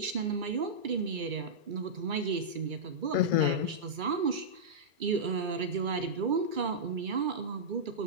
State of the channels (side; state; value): left; late; 2.3 ms